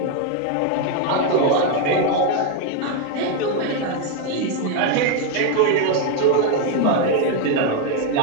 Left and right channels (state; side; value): different; both; correlation 0.01